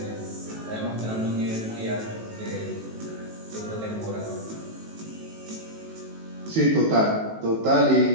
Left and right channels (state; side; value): late; left; 18 ms